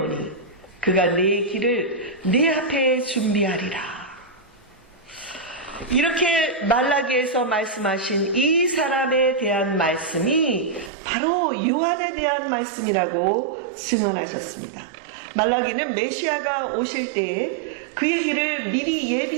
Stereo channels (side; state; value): left; drops out; at 10.9 s